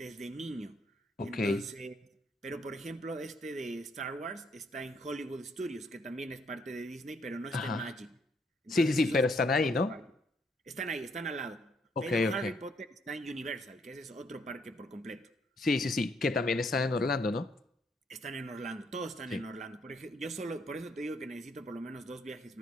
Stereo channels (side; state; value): both; normal; correlation 0.71